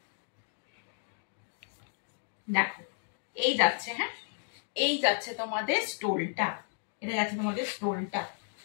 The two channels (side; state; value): right; silent; 56 dB below the other